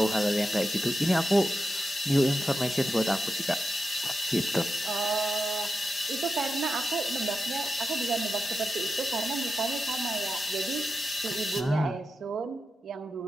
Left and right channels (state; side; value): normal; both; correlation 0.90